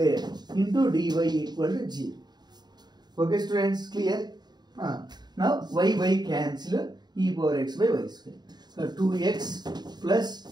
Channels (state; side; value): late; left; 0.20 ms